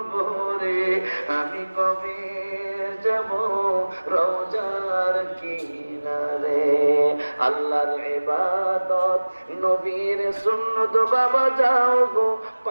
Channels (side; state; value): both; inverted; correlation -1.00